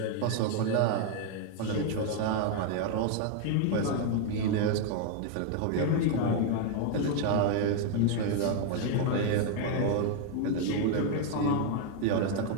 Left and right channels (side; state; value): both; different; correlation 0.00